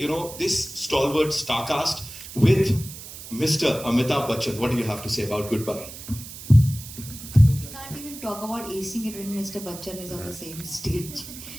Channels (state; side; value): noise; right; hiss, 13 dB below the sound